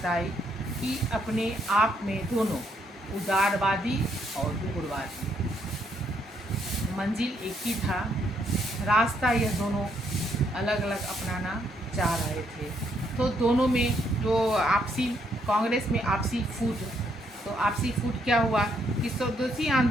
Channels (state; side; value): normal; both; correlation 0.73